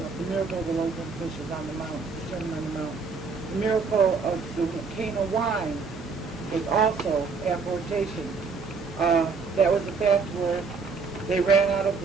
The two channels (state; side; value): quieter; left; 4.9 dB